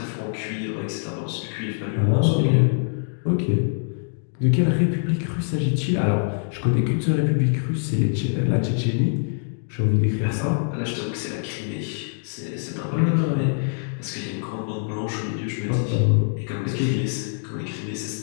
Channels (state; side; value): silent; right; 62 dB below the other